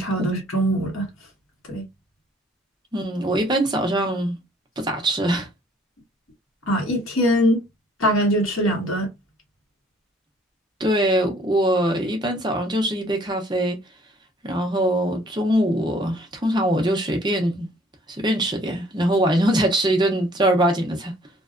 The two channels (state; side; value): normal; both; correlation 0.59